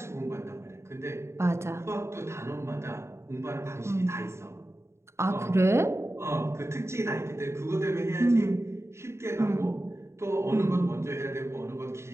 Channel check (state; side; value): late; left; 0.13 ms